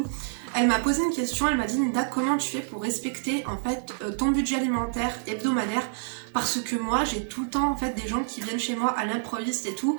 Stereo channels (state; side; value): silent; left; digital silence